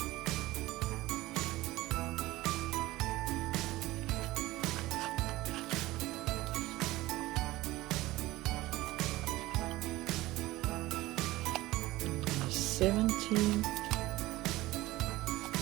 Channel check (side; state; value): left; quieter; 18.1 dB